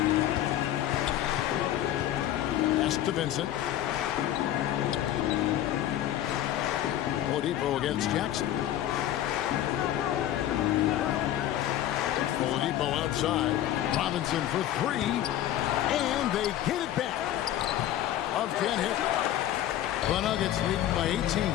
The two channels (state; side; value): quieter; right; 12.4 dB